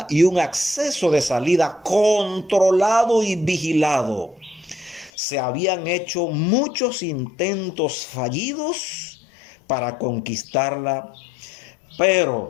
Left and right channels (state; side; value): drops out; right; at 5.1 s